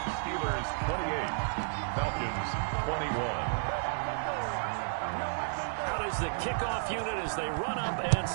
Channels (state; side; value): silent; left; digital silence